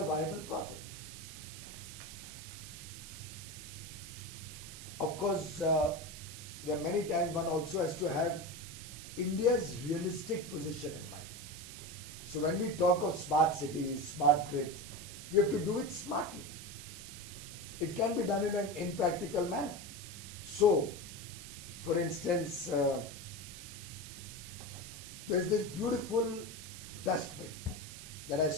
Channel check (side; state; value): right; noise; hiss, 12 dB below the sound